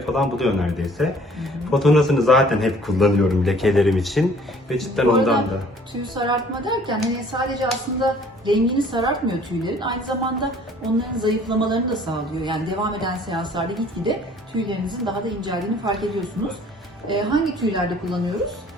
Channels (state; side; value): normal; both; correlation 0.55